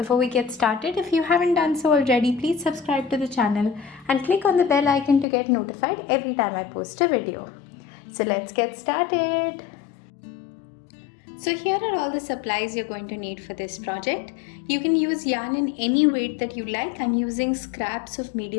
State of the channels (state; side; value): drops out; right; at 5.2 s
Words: we get started, if you haven't done so already, please subscribe to the channel and click on the bell icon to get notified every time I post a video. So let's get started. So here are all the supplies you're going to need for this project. You can use yarn in any weight that you like. I'm using scraps of